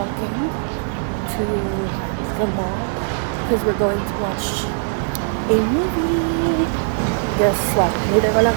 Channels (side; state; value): left; silent; 65 dB below the other